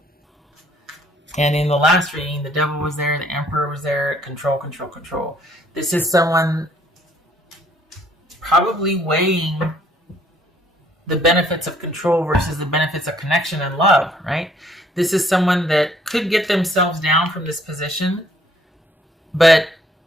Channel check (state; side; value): normal; both; correlation 0.63